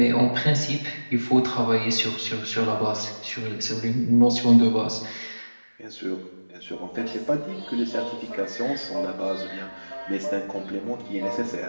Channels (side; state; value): both; inverted; correlation -1.00